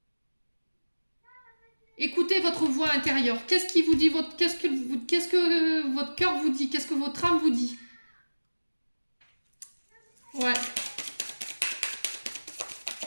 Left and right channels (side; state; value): both; inverted; correlation -1.00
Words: Écoutez votre voix intérieure. Qu'est-ce qui vous dit qu'est-ce que votre cœur vous dit? Qu'est-ce que votre âme vous dit? Ouais.